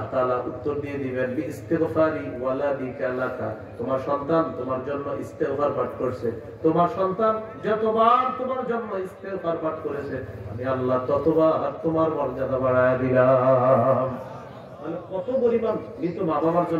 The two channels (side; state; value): both; identical; correlation 1.00